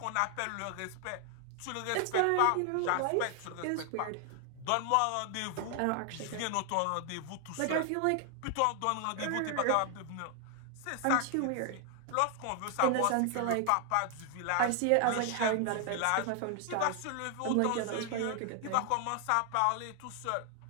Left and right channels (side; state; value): both; different; correlation 0.00